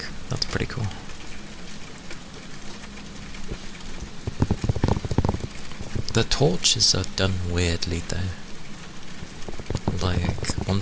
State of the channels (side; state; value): both; identical; correlation 1.00